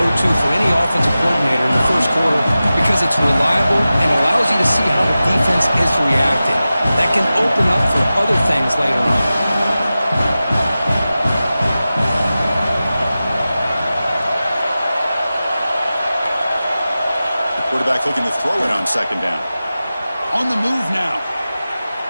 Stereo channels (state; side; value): inverted; both; correlation -0.95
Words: for any offensive coordinator in the first quarter because it's reliable and allows you to see how the defense is reacting. That can open up for other things later on. The quarterback looking to throw it on second down. On the move now.